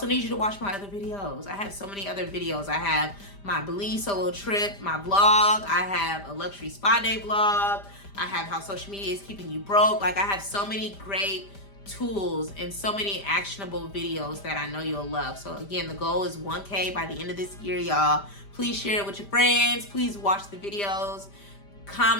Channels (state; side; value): late; right; 5.0 ms